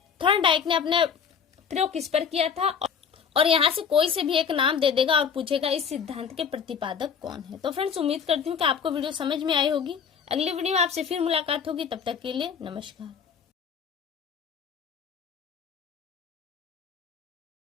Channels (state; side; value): quieter; right; 6.9 dB